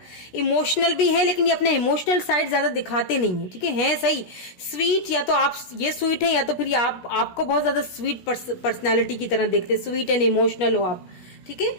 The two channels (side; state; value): right; late; 16 ms